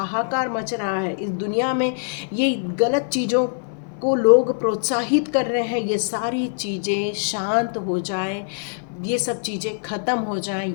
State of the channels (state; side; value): silent; right; 56 dB below the other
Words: मच रहा है, इस दुनिया में ये गलत चीज़ों को लोग प्रोत्साहित कर रहे हैं, ये सारी चीज़ें शांत हो जाएं, ये सब चीज़ें ख़त्म हो जाएं,